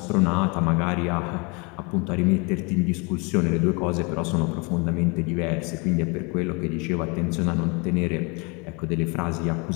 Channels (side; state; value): right; quieter; 30.3 dB